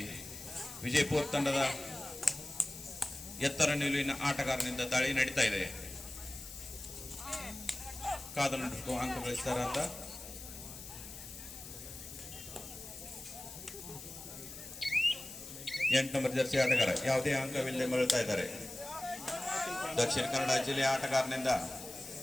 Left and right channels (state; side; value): noise; left; hiss, 12 dB below the sound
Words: ವಿಜಯಪುರ ತಂಡದ ಎತ್ತರ ನಿಲುವಿನ ಆಟಗಾರನಿಂದ ದಾಳಿ ನಡೀತಾ ಇದೆ. ಕಾದ ನಡುಕು ಅಂಕ ಗಳಿಸ್ತಾರ ಅಂತ ಎಂಟು ನಂಬರ್ ಜರ್ಸಿ ಆಟಗಾರ ಯಾವುದೇ ಅಂಕವಿಲ್ಲದೆ ಮರಳ್ತಾ ಇದ್ದಾರೆ. ದಕ್ಷಿಣ ಕನ್ನಡ ಜಿಲ್ಲೆಯ ಆಟಗಾರನಿಂದ